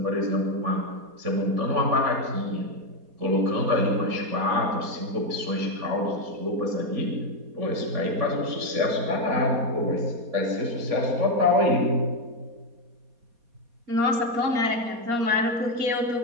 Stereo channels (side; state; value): left; late; 4.2 ms